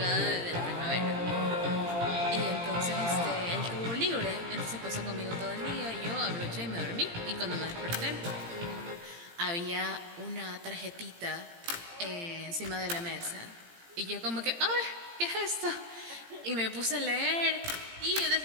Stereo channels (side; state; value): left; late; 17 ms